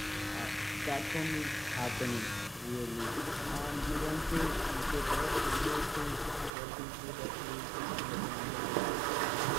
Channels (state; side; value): drops out; left; at 6.5 s